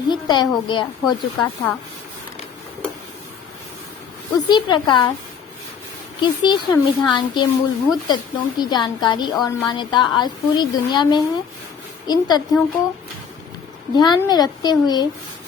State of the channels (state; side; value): quieter; right; 6.8 dB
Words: तय हो चुका था। उसी प्रकार किसी संविधान के मूलभूत तत्वों की जानकारी और मान्यता आज पूरी दुनिया में है। इन तथ्यों को ध्यान में रखते हुए